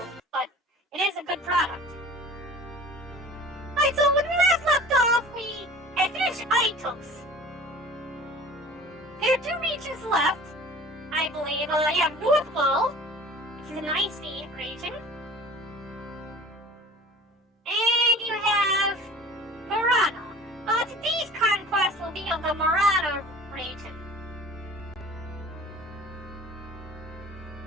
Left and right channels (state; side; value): normal; both; correlation 0.43